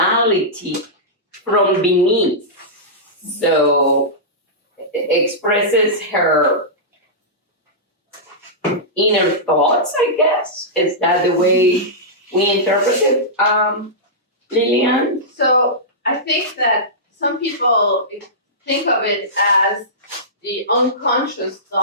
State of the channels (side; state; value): both; normal; correlation -0.15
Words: from beneath. So expresses her inner thoughts, I guess. Is that the way we interpret it, Lillian? So I think that some people think of it as the unconscious